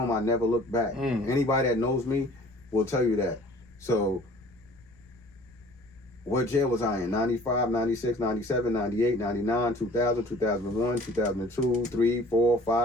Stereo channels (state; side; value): noise; left; rumble, 27 dB below the sound